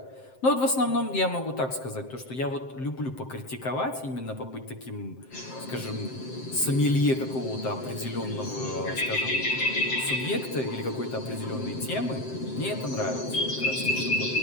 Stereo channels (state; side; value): late; right; 7.7 ms